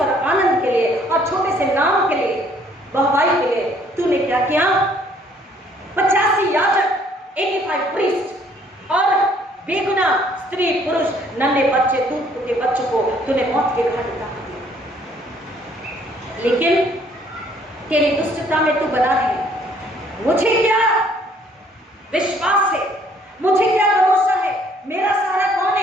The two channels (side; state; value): both; normal; correlation 0.62